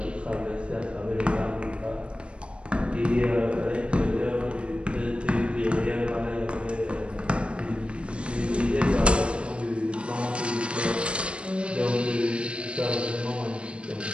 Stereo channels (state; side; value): late; left; 0.058 ms